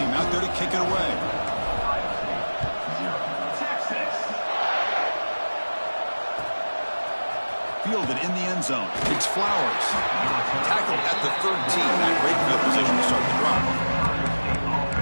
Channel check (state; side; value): inverted; both; correlation -1.00